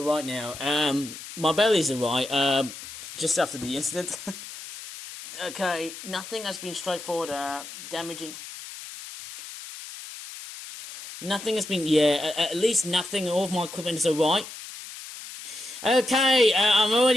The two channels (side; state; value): left; noise; hiss, 12 dB below the sound